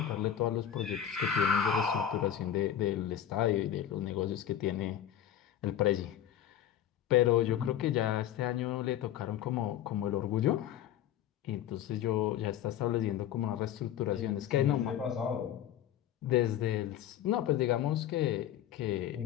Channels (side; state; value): right; quieter; 10.6 dB